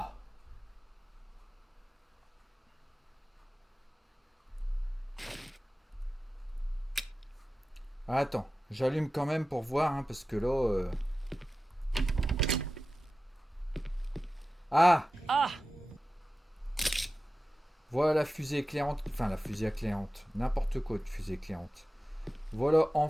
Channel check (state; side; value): normal; both; correlation 0.94